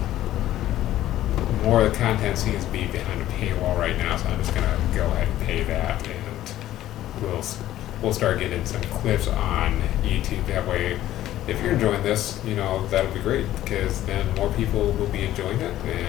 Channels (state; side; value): quieter; right; 13.6 dB